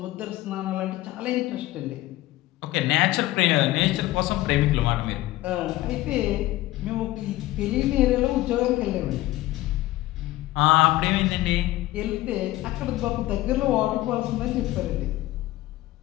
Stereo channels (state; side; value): quieter; right; 16.8 dB